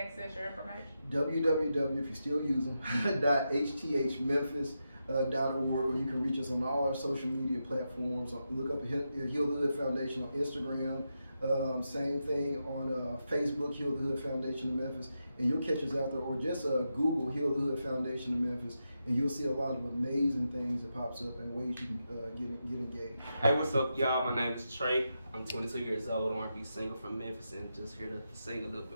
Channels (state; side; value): inverted; both; correlation -0.87